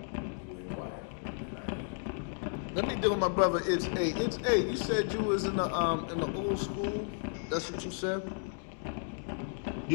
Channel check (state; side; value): silent; right; 56 dB below the other